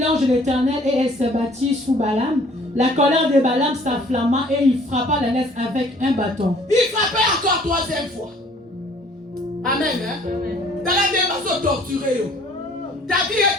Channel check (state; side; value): normal; both; correlation 0.55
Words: de l'Éternel et elle s'abattit sous Balaam. La colère de Balaam s'enflamma et il frappa l'ânesse avec un bâton. Il frappait encore troisième fois. Amen. Hein? Dans la démarche torturée. Ta vie